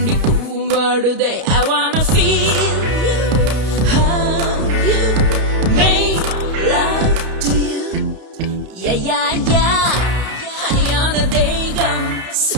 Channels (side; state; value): left; late; 32 ms